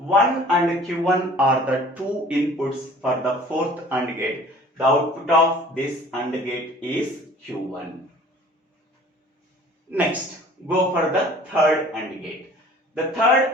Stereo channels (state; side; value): normal; both; correlation 0.49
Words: and Q1 are the two inputs for the 4th AND gate. The output of this AND gate is Q1. Next, go for the 3rd AND gate. The 3rd